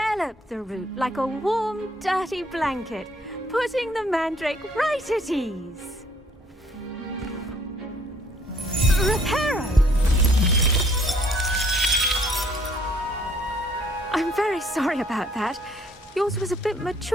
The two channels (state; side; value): normal; both; correlation 0.63